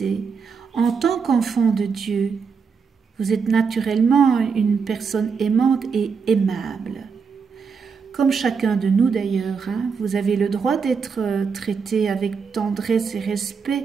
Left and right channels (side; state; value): left; quieter; 5.7 dB